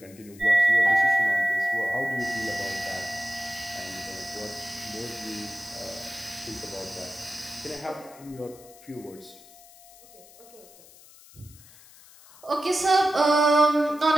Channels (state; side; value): noise; left; hiss, 23 dB below the sound